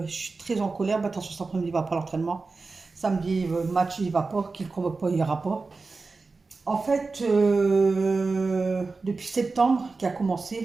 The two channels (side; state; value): left; quieter; 4.0 dB